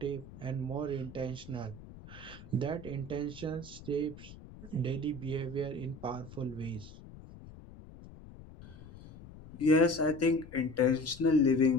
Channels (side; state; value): left; noise; rumble, 17 dB below the sound